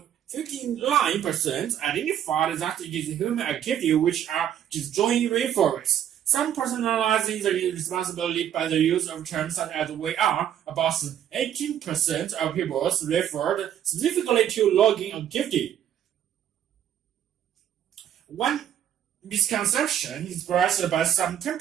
identified that it is human activity which are destroying rainforests. Some personalizing the responsibility by the use of terms such as "we are." About 18% of people referred specifically to logging activity. One misconception expressed by some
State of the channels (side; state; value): left; quieter; 10.2 dB